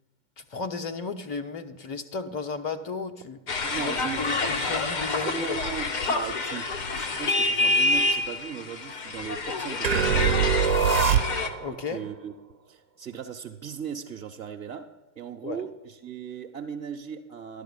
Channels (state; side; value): late; right; 2.1 ms